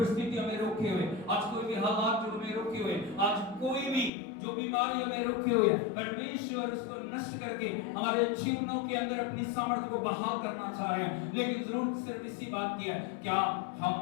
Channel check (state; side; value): drops out; right; at 4.1 s